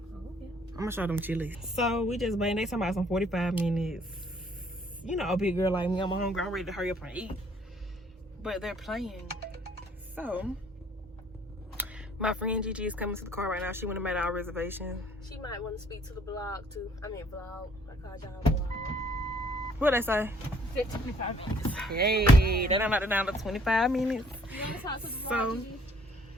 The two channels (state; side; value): normal; both; correlation 0.61